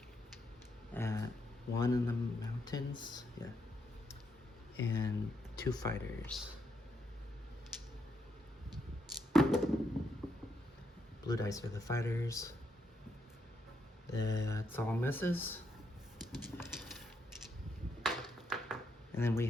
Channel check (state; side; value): normal; both; correlation 0.79